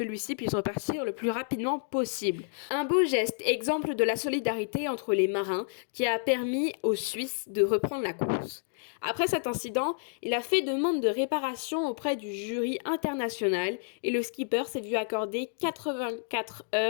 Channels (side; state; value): right; silent; digital silence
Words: puisse repartir le plus rapidement possible. Un beau geste, exemple de la solidarité entre les marins, qui a permis aux Suisses de reprendre la course. Après cet incident, il a fait demande de réparation auprès du jury international et le skipper s'est vu accorder 84